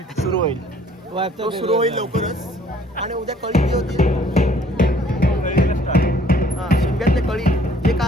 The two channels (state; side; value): normal; both; correlation 0.58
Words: सुरू होईल तो सुरू होईल लवकरच आणि उद्या कळी जी होतील हा शिमग्यातले कळी जे